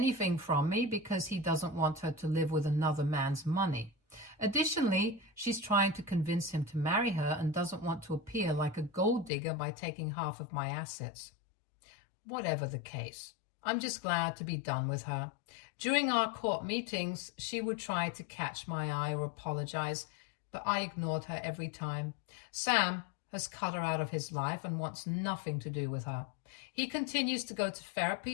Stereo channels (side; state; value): right; drops out; at 9.3 s